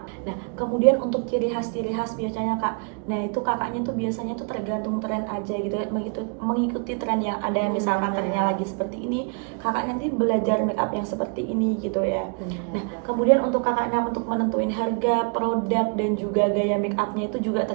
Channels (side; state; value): left; quieter; 39.4 dB